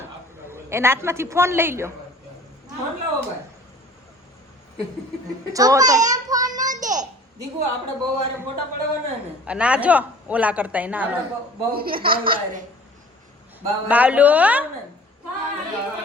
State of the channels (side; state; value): both; normal; correlation 0.48